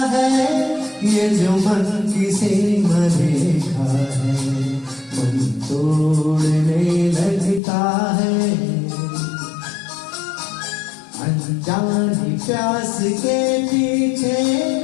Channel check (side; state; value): right; drops out; at 7.6 s